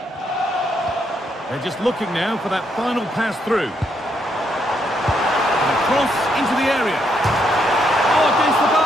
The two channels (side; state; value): both; normal; correlation 0.76